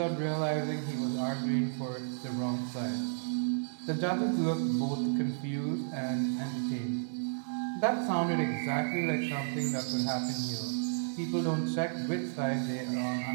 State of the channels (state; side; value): silent; left; digital silence